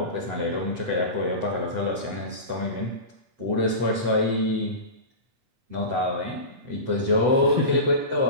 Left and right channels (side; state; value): left; late; 7.9 ms